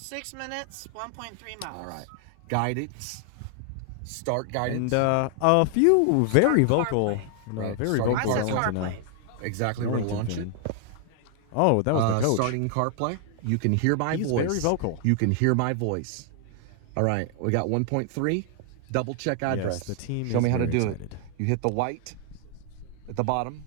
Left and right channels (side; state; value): both; different; correlation 0.00